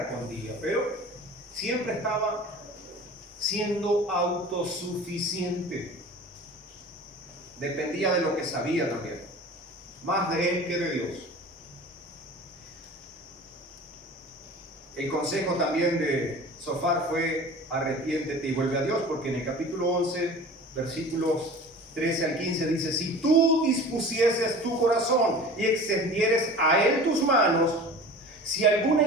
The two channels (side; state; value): both; normal; correlation 0.39